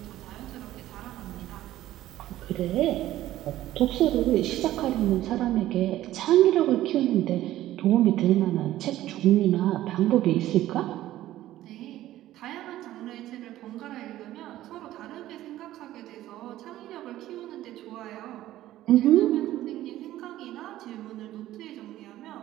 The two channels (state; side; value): quieter; left; 14.3 dB